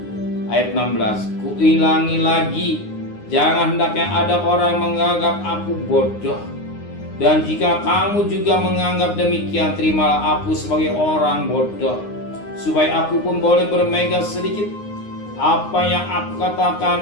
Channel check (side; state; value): right; late; 9.7 ms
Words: Ayat 16, kuulangi lagi, jangan hendaknya ada orang menganggap aku bodoh. Dan jika kamu juga menganggap demikian, terimalah aku sebagai orang bodoh, supaya aku pun boleh bermega sedikit. Apa yang aku